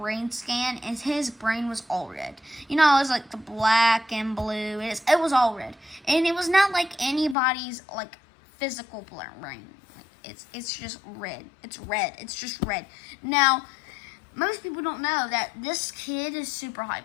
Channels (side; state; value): right; drops out; at 7.4 s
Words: scan, and his brain was all red. You know, it was like the black and blue. It was all red. And it was not like anybody's, like, physical brain. Like, it's just red. It's red. It's just red. Now, most people don't know that this kid is super